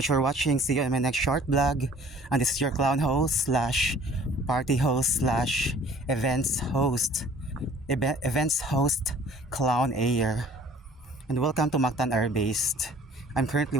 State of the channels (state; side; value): normal; both; correlation 0.52